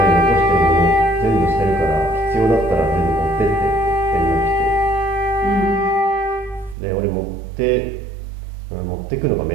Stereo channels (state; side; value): drops out; left; at 6.8 s